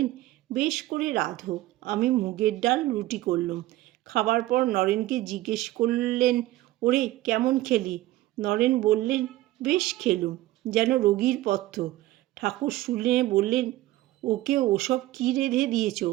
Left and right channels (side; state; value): left; quieter; 16.5 dB